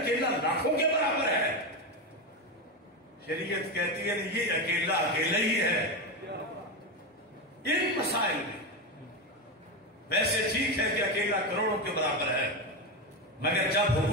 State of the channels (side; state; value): both; normal; correlation 0.14